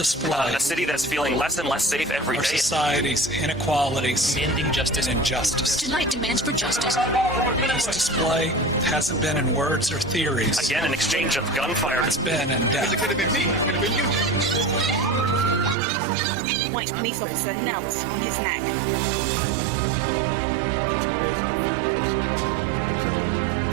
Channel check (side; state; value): left; drops out; at 15.8 s